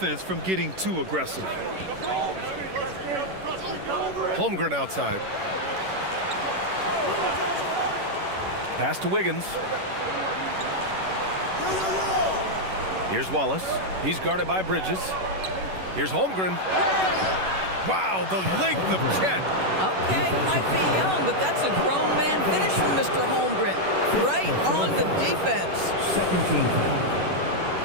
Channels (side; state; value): left; late; 11 ms